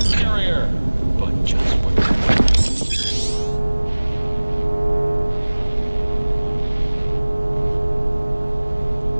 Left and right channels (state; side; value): inverted; both; correlation -1.00